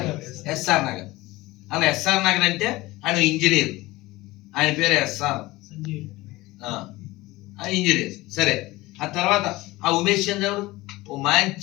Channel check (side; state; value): right; quieter; 19.6 dB